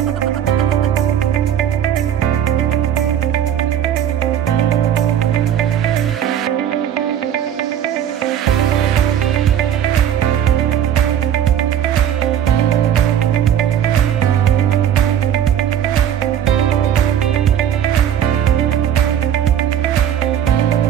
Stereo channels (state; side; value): quieter; left; 9.8 dB